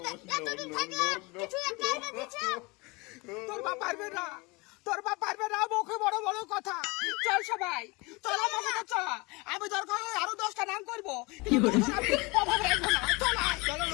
না এতদিন থাকলে কিছু একটা এনে দিছে তোর বাপ পারবে না মুখে বড় বড় কথা চল সবাই চল আমার সাথে চল আমি দরকার হয় আরো 10টা নাম করবো কিন্তু আমি অভাব রাখবো না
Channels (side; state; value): right; quieter; 26.0 dB